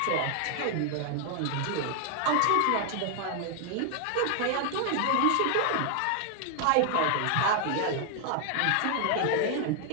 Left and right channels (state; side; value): different; both; correlation 0.00